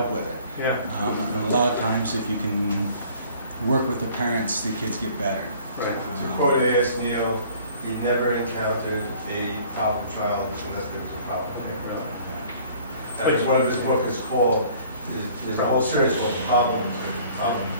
with it. Yeah. And a lot of times if you can work with the parents, the kids get better. Right. To quote A.S. Neal, he never encountered a problem child unless there was a problem. As one of his books is called, there's a whole series called Problems. There's problem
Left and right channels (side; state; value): both; inverted; correlation -0.52